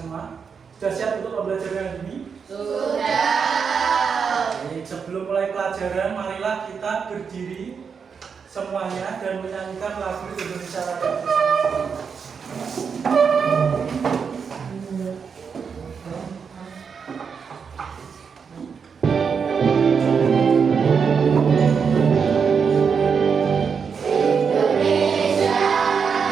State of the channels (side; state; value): left; quieter; 6.2 dB